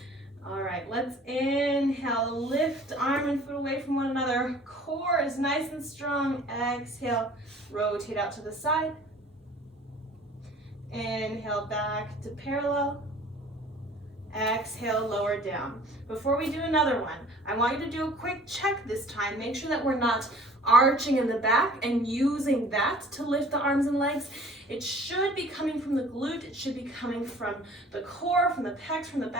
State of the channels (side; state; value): both; normal; correlation 0.50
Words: All right, let's inhale, lift arm and foot away from one another. Core is nice and strong. Exhale, rotate out to the side. Inhale, back to parallel. Exhale, lower down. Before we do another one, I want you to do a quick check this time. Make sure that we're not arching in the back and using that to lift the arms and legs. It should be coming from the glute. It should be coming from the core, from the pecs, from the